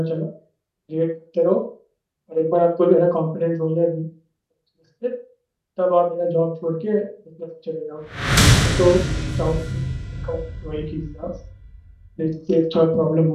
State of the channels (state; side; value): identical; both; correlation 1.00